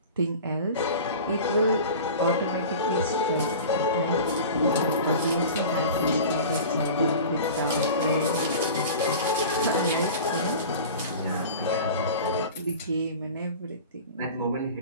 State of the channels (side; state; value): both; inverted; correlation -0.37